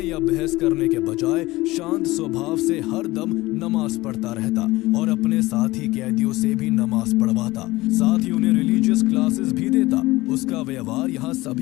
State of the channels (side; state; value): right; quieter; 19.4 dB